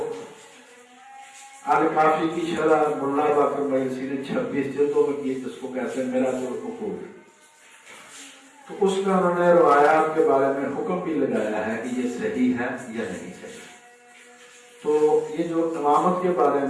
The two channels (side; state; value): both; identical; correlation 1.00